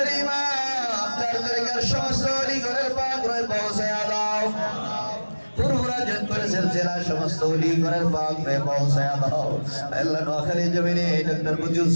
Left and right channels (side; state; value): both; inverted; correlation -1.00